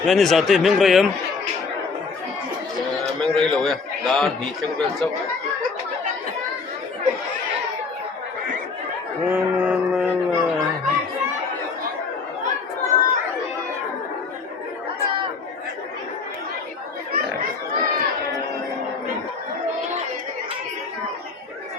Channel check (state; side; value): quieter; right; 4.6 dB